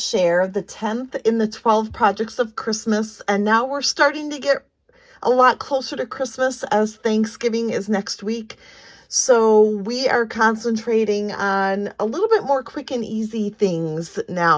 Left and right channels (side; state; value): both; identical; correlation 1.00